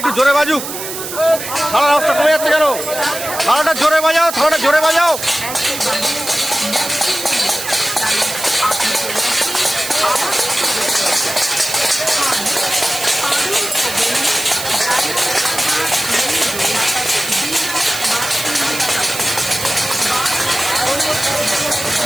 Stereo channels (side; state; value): right; noise; hiss, 7 dB below the sound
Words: জোরে বাজুক। হাওড়ার রাস্তা কমে যাচ্ছে কেন? হাওড়াটা জোরে বাজাও, হাওড়াটা জোরে বাজাও।